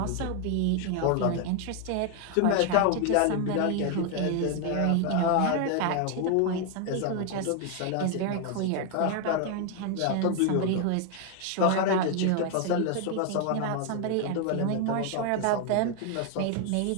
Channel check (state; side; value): different; both; correlation 0.00